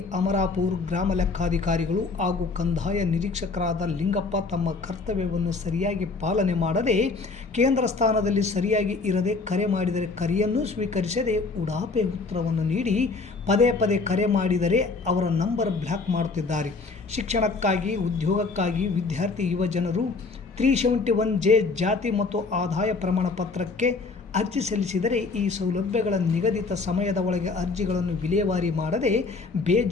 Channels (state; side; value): quieter; right; 4.1 dB